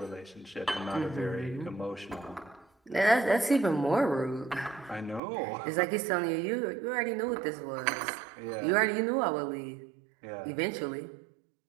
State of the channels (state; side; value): drops out; left; at 5.2 s